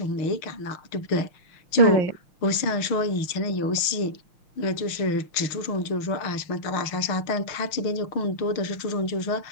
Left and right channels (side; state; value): right; late; 6.5 ms